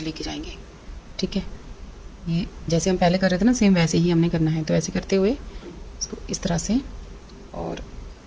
लेके जाएंगे, ठीक है। ये जैसे हम पहले कर रहे थे ना, सेम वैसे ही हमने करना है। तो ऐसे करते हुए इसको इस तरह से और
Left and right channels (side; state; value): both; identical; correlation 1.00